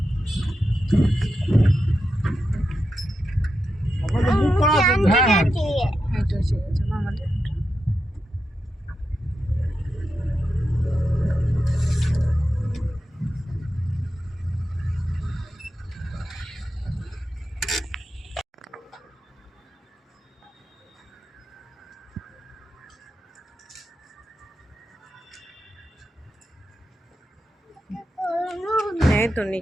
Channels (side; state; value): both; normal; correlation 0.87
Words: আমাদের বুক করা আছে। হ্যাঁ এটা হচ্ছে আমাদের হ্যাঁ তো